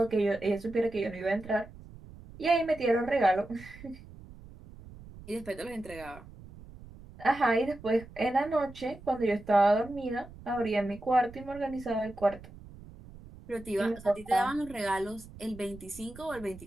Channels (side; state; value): right; noise; rumble, 18 dB below the sound